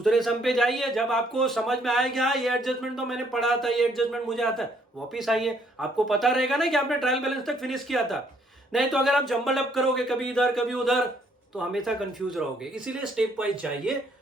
सम पे जाइए, जब आपको समझ में आएगा हाँ ये एडजस्टमेंट तो मैंने पढ़ा था, ये एडजस्टमेंट मुझे आता है, वापिस आइए, आपको पता रहेगा ना कि आपने ट्रायल बैलेंस तक फिनिश किया था। नहीं तो अगर आप जंबल अप करोगे कभी इधर कभी उधर, तो हमेशा कंफ्यूज रहोगे। इसीलिए स्टेप वाइज जाइए।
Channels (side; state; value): both; normal; correlation 0.67